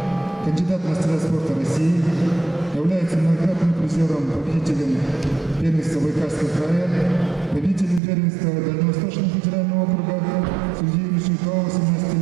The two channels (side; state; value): left; drops out; at 8.0 s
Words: кандидат в мастера спорта России, является многократным призером, победителем первенства Байкальского края, победителем первенства Дальневосточного федерального округа среди юношей до 18